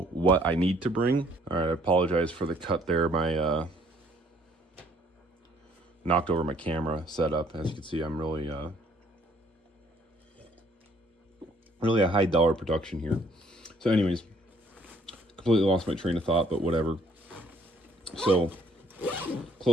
what I need to bring. All right, I apologize for the cut there. My knocked over my camera setup. As you can see, I'm really a high dollar production here. So anyways, completely lost my train of thought, but whatever. So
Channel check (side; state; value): both; normal; correlation 0.63